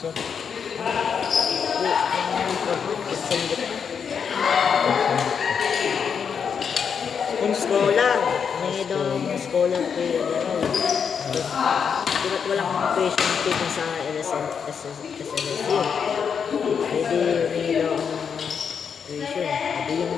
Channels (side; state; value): right; quieter; 6.8 dB